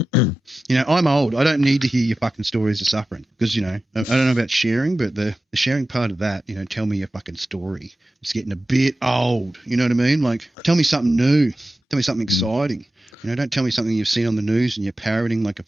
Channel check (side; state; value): both; normal; correlation 0.94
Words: I'm old. I don't need to hear your fucking stories of suffering because, you know, I don't know about sharing, but the sharing part of that, you know, tell me your fucking story. It's getting a bit old. You know what I mean? Like, tell me something new. Tell me something exciting. You know, don't tell me something you've seen on the news and you're parroting like a